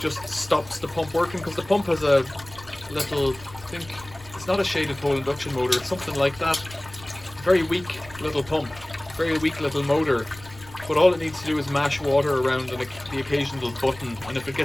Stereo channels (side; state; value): left; noise; rumble, 20 dB below the sound